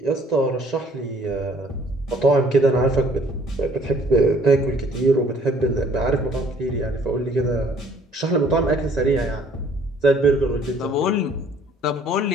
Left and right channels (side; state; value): both; normal; correlation 0.58